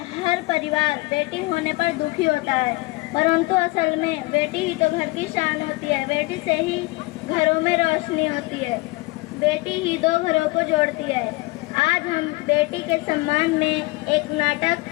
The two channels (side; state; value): right; quieter; 23.5 dB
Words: हर परिवार बेटी होने पर दुखी होता है, परंतु असल में बेटी ही तो घर की शान होती है। बेटी से ही घरों में रोशनी होती है, बेटी ही दो घरों को जोड़ती है। आज हम बेटी के सम्मान में एक नाटक